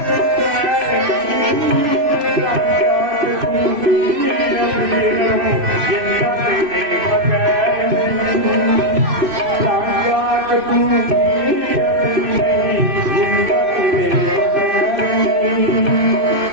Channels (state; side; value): late; left; 3.0 ms